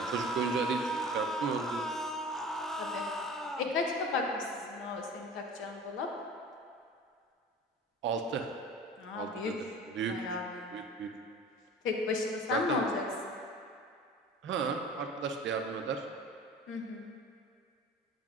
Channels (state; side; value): normal; both; correlation 0.40